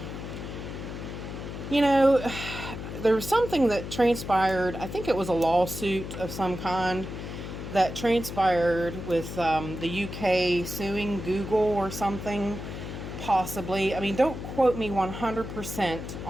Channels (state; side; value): noise; left; hum, 8 dB below the sound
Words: You know, there was something that transpired. I think it was a lawsuit of some kind that transpired with the UK suing Google or something, possibly. I mean, don't quote me 100%